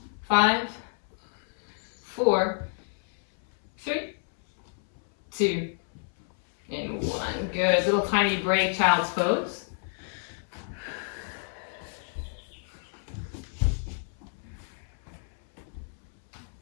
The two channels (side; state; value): right; silent; 58 dB below the other